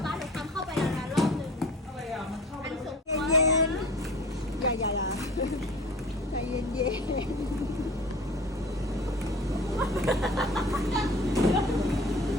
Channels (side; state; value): both; normal; correlation 0.42